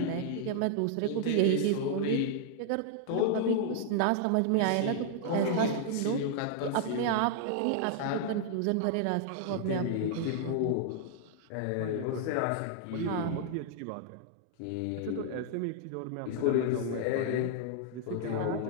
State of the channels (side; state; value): both; different; correlation 0.00